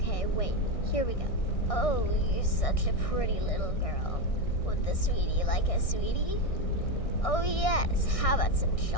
wait. Here we go. Oh, you're such a pretty little girl. Would the sweetie like a sweetie? Oh yes, how about some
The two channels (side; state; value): right; late; 1.6 ms